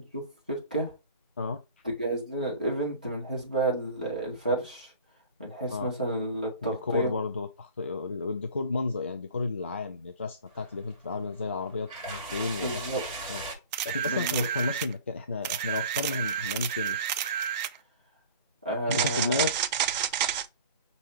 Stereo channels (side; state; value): both; inverted; correlation -0.42